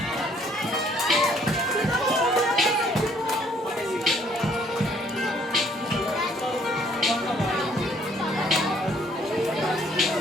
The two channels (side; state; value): both; normal; correlation 0.63